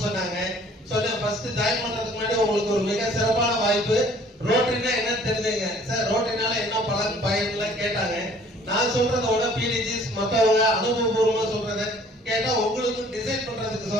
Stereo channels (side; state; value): both; normal; correlation 0.55